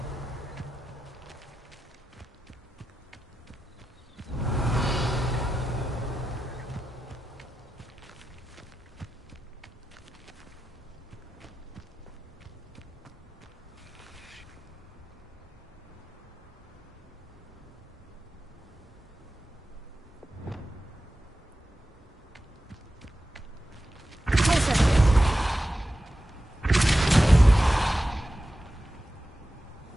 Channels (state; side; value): normal; both; correlation 0.92